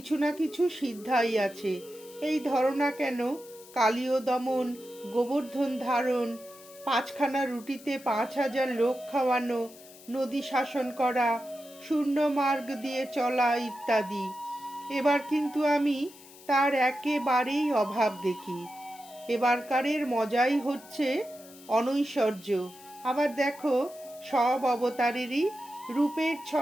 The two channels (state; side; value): noise; left; hiss, 21 dB below the sound